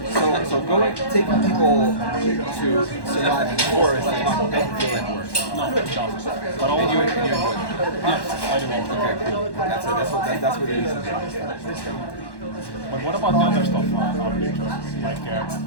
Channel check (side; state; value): right; late; 1.1 ms